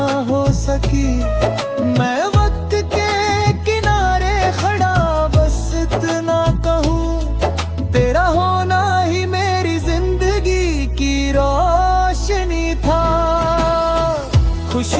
हो सकी। मैं वक्त के किनारे खड़ा बस इतना कहूँ, तेरा होना ही मेरी जिंदगी की रोशनी था।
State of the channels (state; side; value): identical; both; correlation 1.00